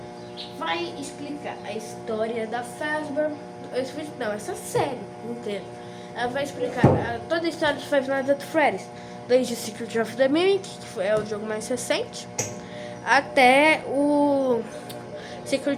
Vai explicar a história da Fazbear, essa série inteira. Ela vai explicar toda a história de Five Nights at Freddy's, desde Secret of the Mimic, que é o jogo mais recente, até o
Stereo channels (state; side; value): identical; both; correlation 1.00